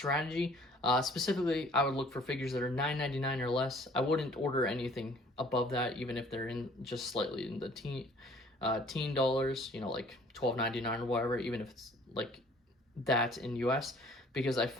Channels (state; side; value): normal; both; correlation 0.55